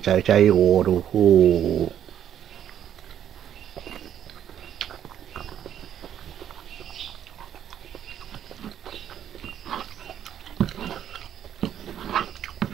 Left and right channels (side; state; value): left; quieter; 10.2 dB